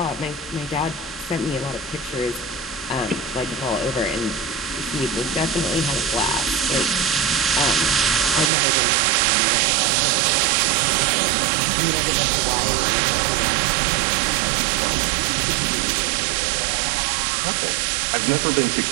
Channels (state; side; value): drops out; left; at 8.5 s